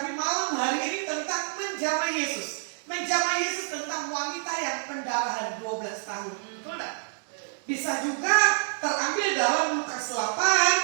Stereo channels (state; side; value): silent; left; digital silence